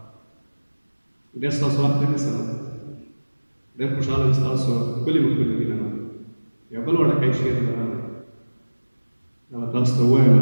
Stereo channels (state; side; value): inverted; both; correlation -1.00